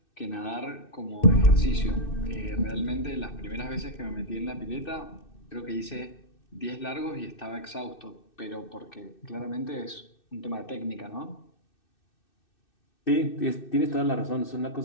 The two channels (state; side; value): late; right; 2.6 ms